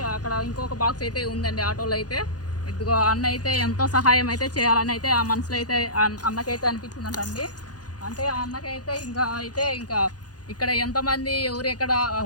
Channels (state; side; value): late; right; 0.69 ms